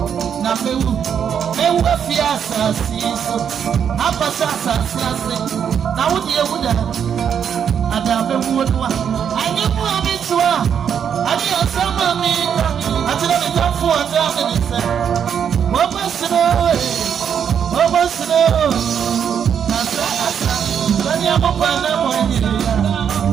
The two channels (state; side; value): quieter; left; 8.0 dB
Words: na mewu afia asasi so apasa asasi na wodi ewuda ada mewu no anyi mu amitwa ani asama mi atira mi tafu ata mi se obosno asa ani amopana mo ni